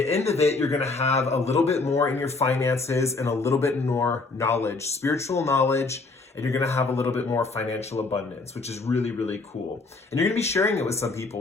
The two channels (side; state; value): right; quieter; 3.7 dB